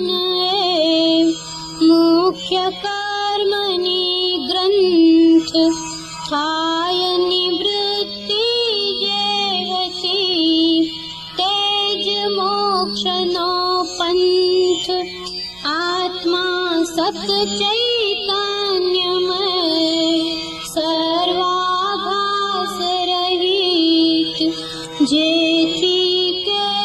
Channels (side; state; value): right; noise; hum, 27 dB below the sound